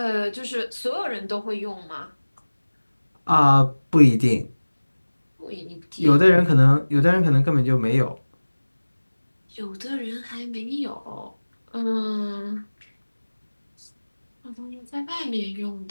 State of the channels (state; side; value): inverted; both; correlation -1.00